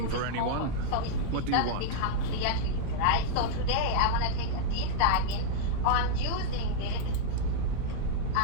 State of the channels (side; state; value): both; different; correlation -0.02